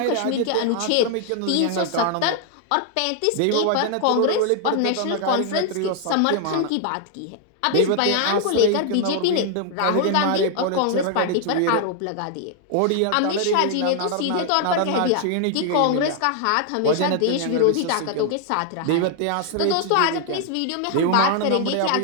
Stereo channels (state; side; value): different; both; correlation 0.00